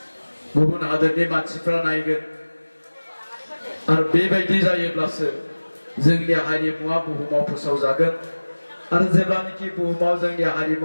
गुबुन हादोरनि मानसिफ्रा नायगोन आरो बेबायदि जायोब्लासो जोंनि हारिमुवा बुहुमाव फोसावजागोन आरो जेब्लानोखि बुहुमाव जोंनि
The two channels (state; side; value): inverted; both; correlation -1.00